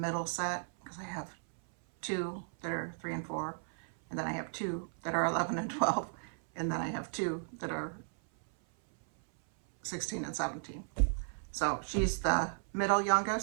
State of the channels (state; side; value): silent; left; 54 dB below the other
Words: set because I have 2 that are 3 and 4, and then I have 2 that are 11 and 12, and then I have 2 that are 16 and 17. So she's the middle